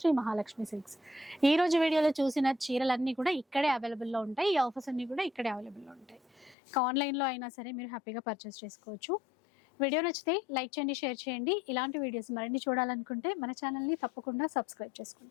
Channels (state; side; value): drops out; right; at 6.6 s